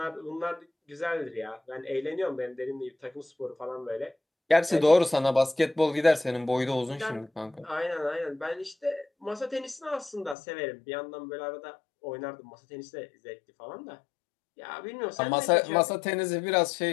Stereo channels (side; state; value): right; drops out; at 10.4 s